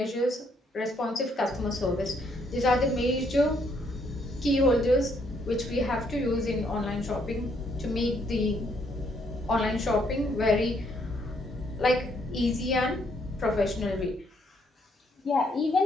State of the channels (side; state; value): both; normal; correlation 0.71